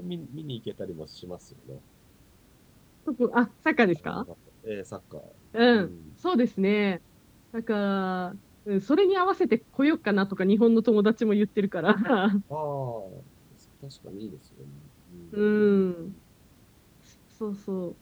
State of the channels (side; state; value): both; identical; correlation 1.00